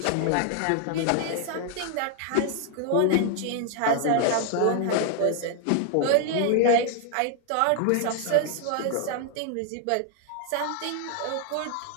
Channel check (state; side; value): different; both; correlation 0.00